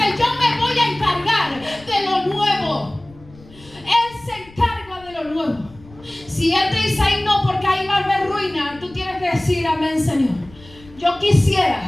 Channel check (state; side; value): noise; left; rumble, 23 dB below the sound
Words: yo me voy a encargar de lo nuevo. Él se encarga de lo nuevo. Si Él te dice: ahí no, porque ahí va a haber ruina, tú tienes que decir: amén, Señor, yo